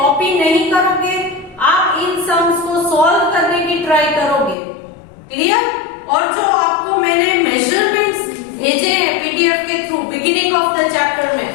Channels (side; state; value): right; drops out; at 4.5 s